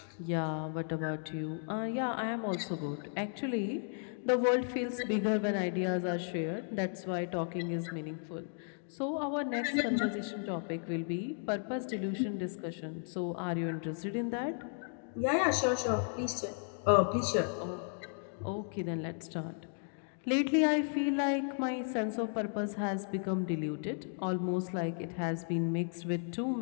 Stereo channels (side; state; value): right; silent; 55 dB below the other